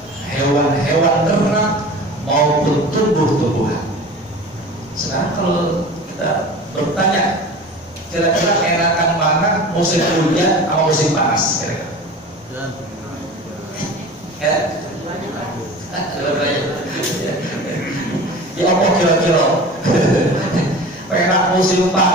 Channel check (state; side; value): normal; both; correlation 0.37